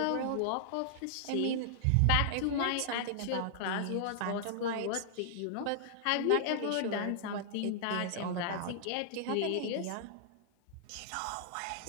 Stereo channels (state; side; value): different; both; correlation -0.01